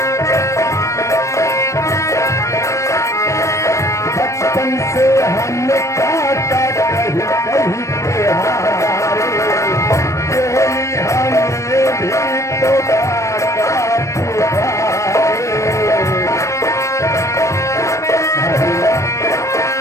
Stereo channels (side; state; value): right; late; 0.15 ms